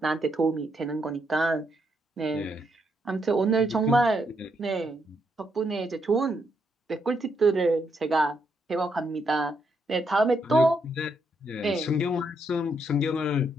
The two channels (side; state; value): both; normal; correlation 0.78